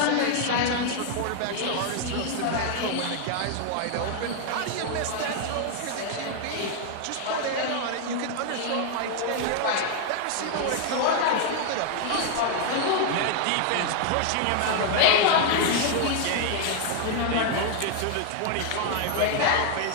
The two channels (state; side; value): different; both; correlation 0.00